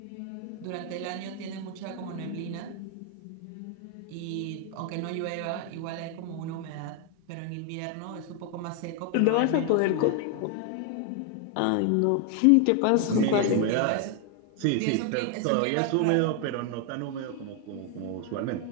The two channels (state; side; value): different; both; correlation 0.01